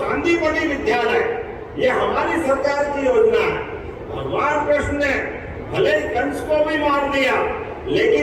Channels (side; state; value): both; identical; correlation 1.00